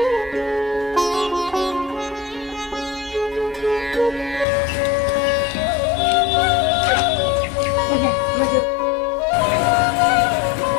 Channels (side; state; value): right; drops out; at 4.5 s